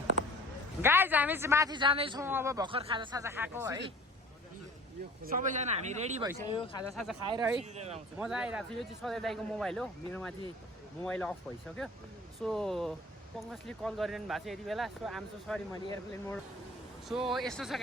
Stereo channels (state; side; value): normal; both; correlation 0.46